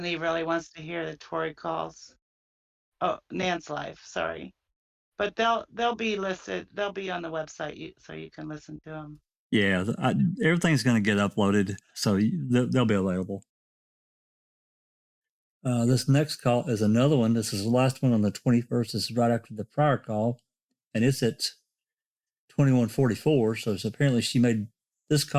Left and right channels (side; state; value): both; identical; correlation 1.00